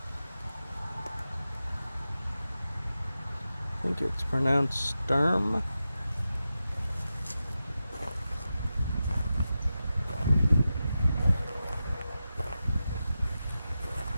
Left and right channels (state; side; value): inverted; both; correlation -0.91